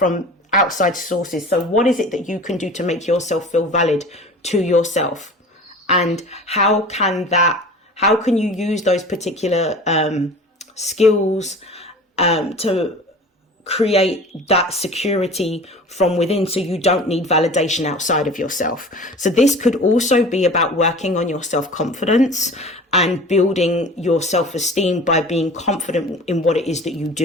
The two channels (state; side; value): normal; both; correlation 0.40